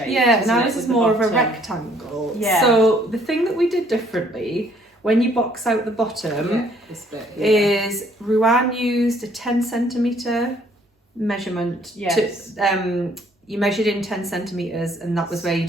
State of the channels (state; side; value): normal; both; correlation 0.63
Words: Yeah, and ours with is the more of a bottom. rectangle. Yeah. So the thing that we did differently when you box out the bottom This bit here. is Ruan used a 10 centimetre measurement. Yes. You measured in 10 centimetres and that was where you